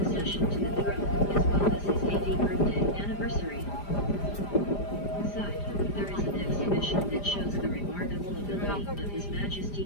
accession to the throne, as well as his 80th birthday anniversary. Inside, there is an exhibition that shows the remarkable ability of His Majesty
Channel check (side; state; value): right; late; 5.0 ms